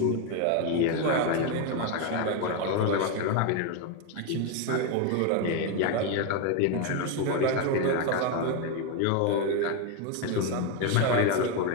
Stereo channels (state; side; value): different; both; correlation 0.02